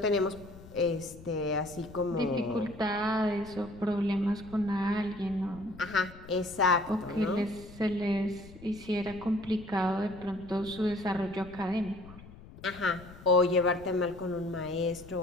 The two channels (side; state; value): left; noise; rumble, 18 dB below the sound